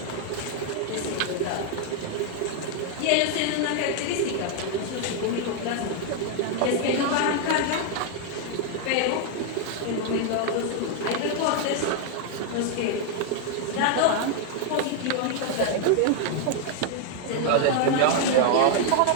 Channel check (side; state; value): both; different; correlation 0.00